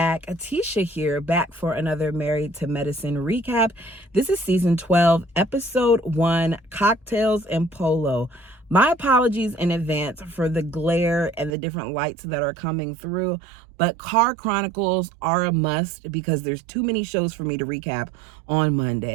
Atisha here, back for another Married to Medicine recap. This is season 12, episode 1, Cocktails and Polo. My apologies in advance for the glare and the different lights that are coming through, but Car Chronicles are a must because there's too many shows for me to recap on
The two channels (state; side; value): drops out; left; at 11.6 s